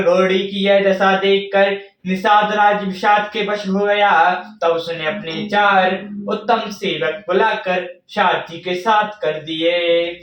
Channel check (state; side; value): identical; both; correlation 1.00